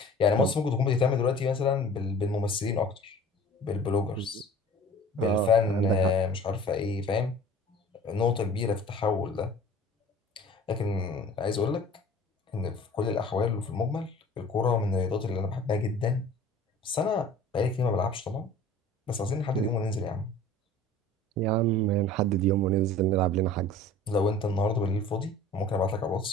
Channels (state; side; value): normal; both; correlation 0.44